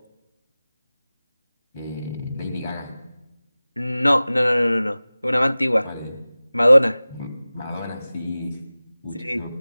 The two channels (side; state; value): both; inverted; correlation -0.97